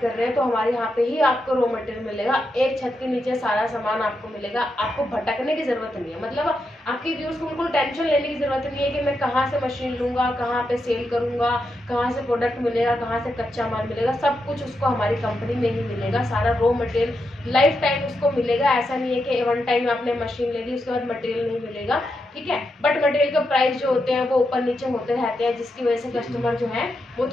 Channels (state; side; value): normal; both; correlation 0.85